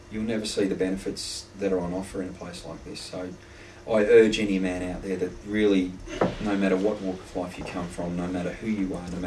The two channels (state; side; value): identical; both; correlation 1.00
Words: You'll never see the benefits that are on offer in a place like this. So I urge any man out there that really, no matter what walk of life you come from, no matter who you are, no